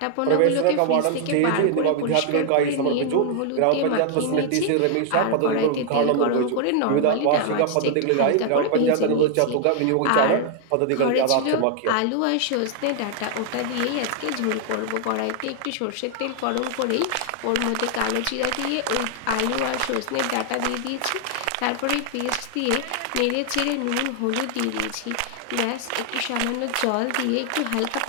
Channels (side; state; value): both; different; correlation 0.00